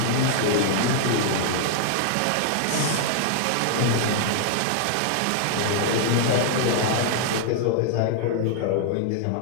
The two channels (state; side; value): different; both; correlation 0.00